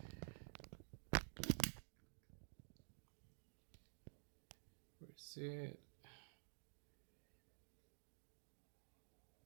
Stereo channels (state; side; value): silent; left; digital silence